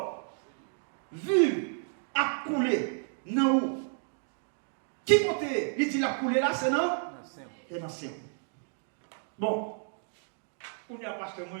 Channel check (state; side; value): silent; left; 57 dB below the other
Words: vive a coulé dans où? Qui côté il dit la coulé là, c'est non? C'est dans le ciel. Bon, on y a parce que